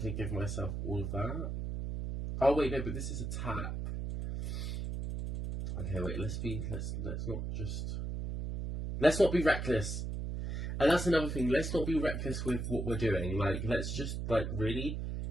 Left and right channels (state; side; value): noise; right; hum, 3 dB below the sound